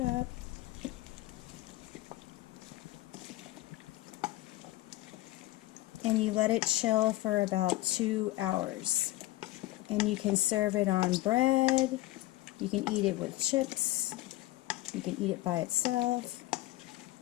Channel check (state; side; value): quieter; right; 17.6 dB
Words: And you let it chill for about 2 hours. And you can serve it on bread. You can eat it with chips. You can eat it by itself.